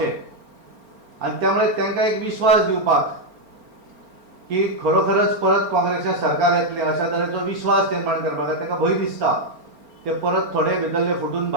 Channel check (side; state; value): left; late; 4.4 ms